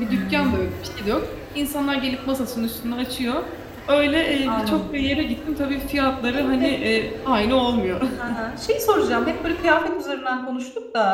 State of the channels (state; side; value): identical; both; correlation 1.00